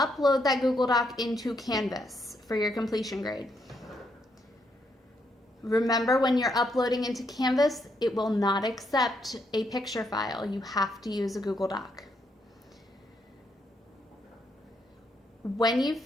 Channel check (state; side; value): normal; both; correlation 0.76